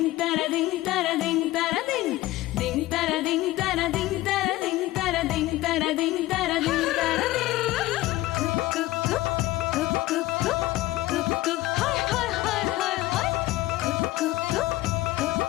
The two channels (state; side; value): quieter; right; 17.2 dB